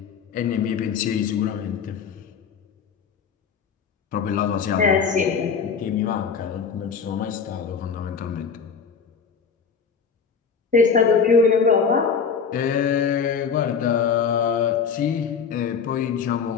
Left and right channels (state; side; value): quieter; right; 6.1 dB